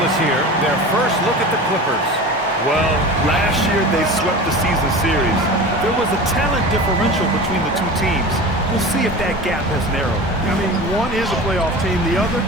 here, their first look at the Clippers. Well, last year they swept the season series. There was a talent differential between the two teams. We'll see if that gap has narrowed. I mean, one is a playoff team. The other,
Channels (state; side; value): normal; both; correlation 0.33